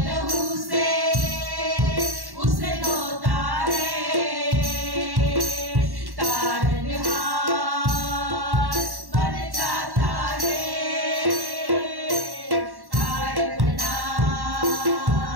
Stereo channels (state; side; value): late; left; 1.1 ms